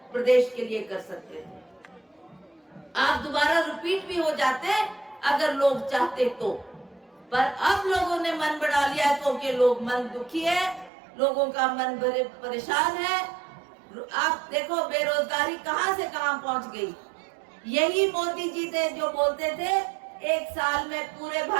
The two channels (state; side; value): drops out; left; at 10.9 s